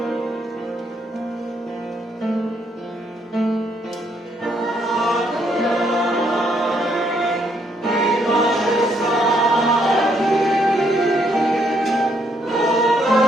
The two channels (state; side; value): normal; both; correlation 0.72